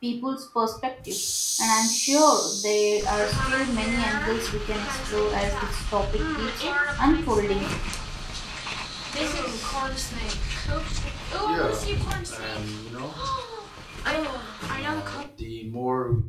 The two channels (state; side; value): identical; both; correlation 1.00